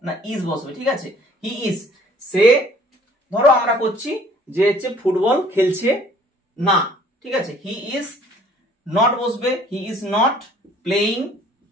না ইজ বসবে, ঠিক আছে। হি ইজ, সে ধরো আমরা করছি যে হচ্ছে ফুটবল খেলছে না, ঠিক আছে। হি ইজ নট বসবে, he is not playing,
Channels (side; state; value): both; normal; correlation 0.56